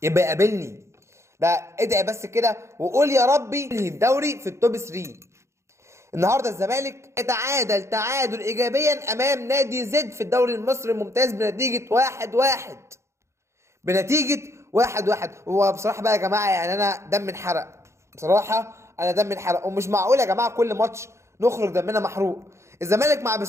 يقابلني. ده ادعي بس كده وقول يا ربي انهي الدوري في التوب 3. النهارده الزمالك تعادل ايجابيا امام نادي زد في الدوري المصري الممتاز بنتيجه 1-1. هو بصراحه بقى يا جماعه، يعني انا دم انحرق بصراحه. ومش معقول يا جماعه كل ماتش نخرج دمنا محروق. الزمالك مع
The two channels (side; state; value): left; late; 0.14 ms